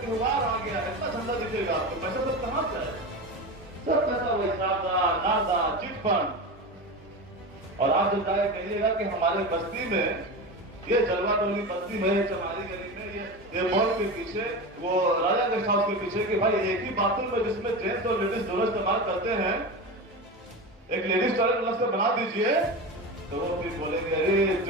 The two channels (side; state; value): both; normal; correlation 0.24